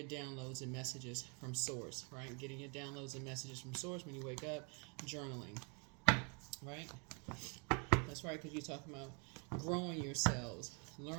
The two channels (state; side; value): quieter; left; 35.2 dB